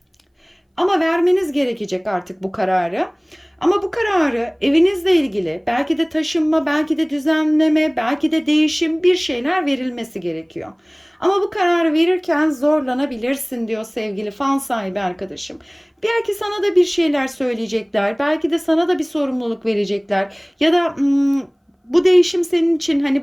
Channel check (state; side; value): identical; both; correlation 1.00